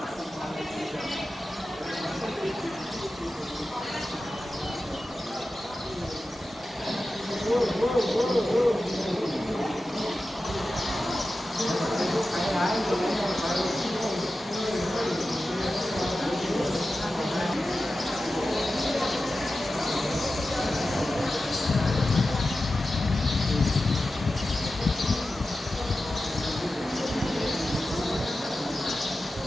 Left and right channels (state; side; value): normal; both; correlation 0.93